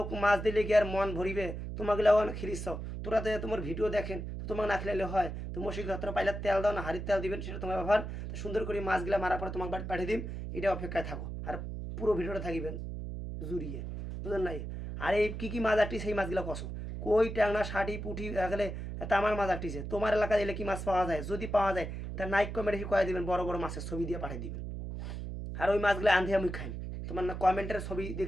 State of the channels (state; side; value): noise; right; hum, 6 dB below the sound